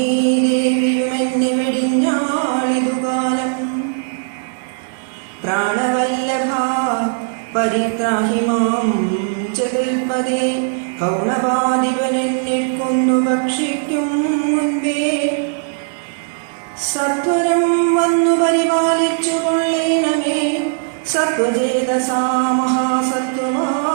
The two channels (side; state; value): left; silent; digital silence